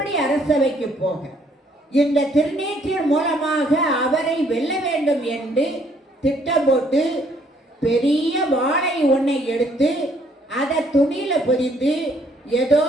அரசவைக்கு போக இந்த திருநீற்றின் மூலமாக அவரை வெல்ல வேண்டும் என்று திட்டம் போட்டு பெரிய வாளை ஒன்றை எடுத்து அதை துணியில பொதிந்து ஏதோ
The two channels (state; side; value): normal; both; correlation 0.66